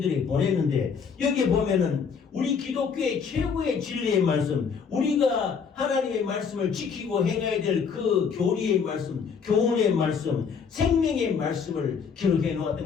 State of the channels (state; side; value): quieter; right; 6.2 dB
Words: 보냈는데, 여기 보면은 우리 기독교의 최고의 진리의 말씀, 우리가 하나님의 말씀을 지키고 행해야 될 그 교리의 말씀, 교훈의 말씀, 생명의 말씀을 기록해